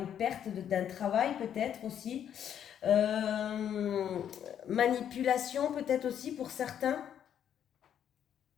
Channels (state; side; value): quieter; right; 9.4 dB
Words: perte d'un travail, peut-être aussi. Manipulation, peut-être aussi pour certains.